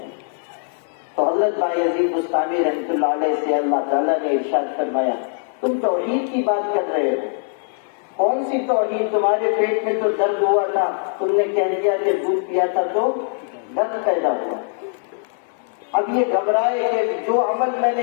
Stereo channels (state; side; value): silent; right; digital silence